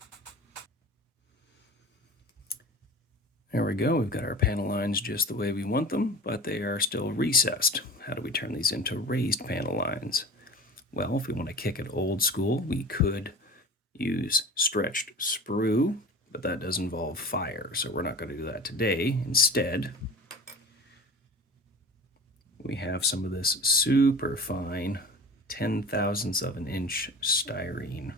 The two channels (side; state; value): both; normal; correlation 0.38